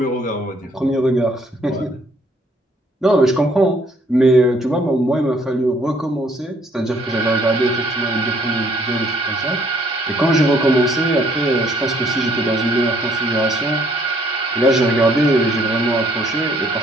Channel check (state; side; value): normal; both; correlation 0.64